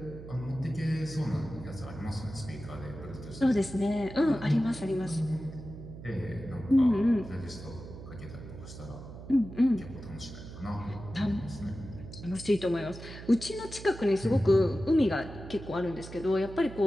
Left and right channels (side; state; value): right; noise; hum, 13 dB below the sound